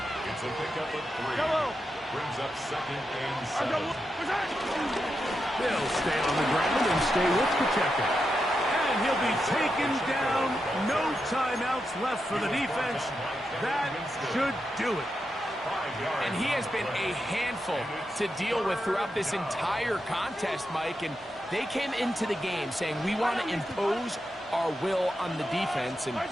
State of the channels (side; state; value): both; normal; correlation 0.86